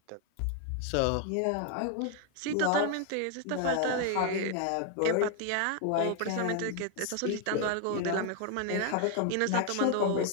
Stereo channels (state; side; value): different; both; correlation 0.01